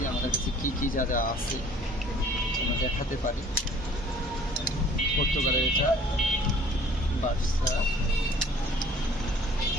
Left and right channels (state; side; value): normal; both; correlation 0.53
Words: আমাদের কাছে কী কী যা যা আছে আমরা দেখাতে পারি। পর্তুগালের এটা বার্সা,